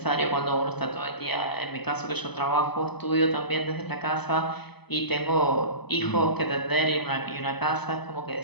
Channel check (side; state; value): right; late; 0.98 ms